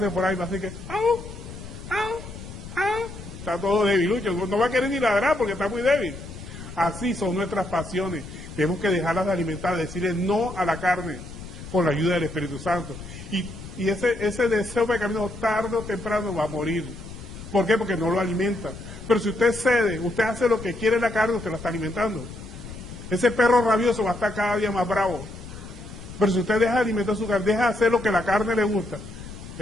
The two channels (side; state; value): left; noise; rumble, 13 dB below the sound